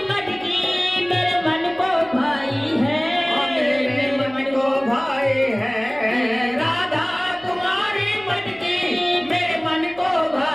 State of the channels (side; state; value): right; noise; hum, 24 dB below the sound